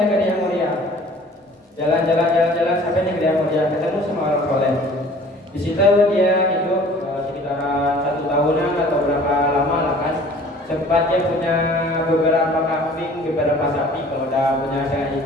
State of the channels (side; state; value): both; normal; correlation 0.50